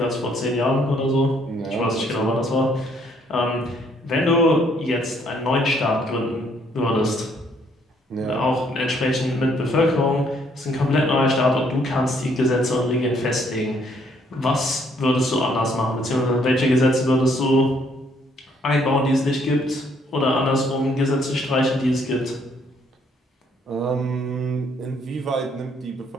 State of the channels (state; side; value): normal; both; correlation 0.67